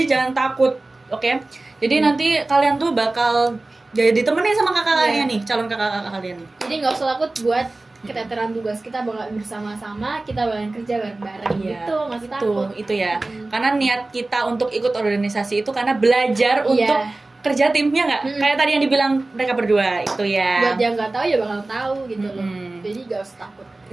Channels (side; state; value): left; quieter; 3.0 dB